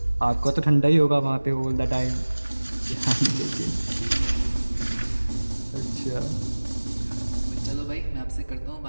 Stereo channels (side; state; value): both; inverted; correlation -1.00